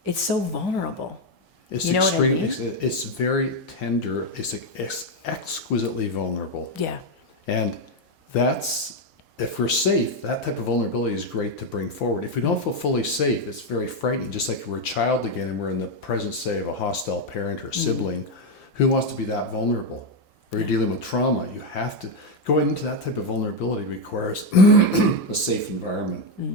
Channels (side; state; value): both; normal; correlation 0.06